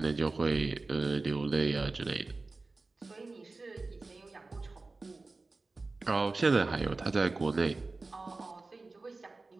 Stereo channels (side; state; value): left; quieter; 3.5 dB